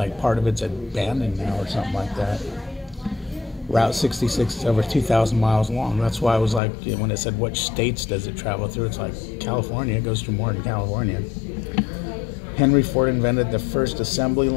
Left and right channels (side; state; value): right; drops out; at 6.6 s